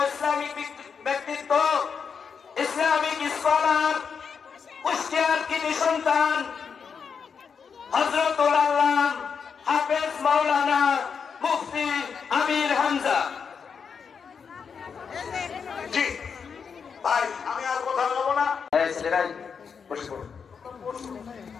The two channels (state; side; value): quieter; right; 6.2 dB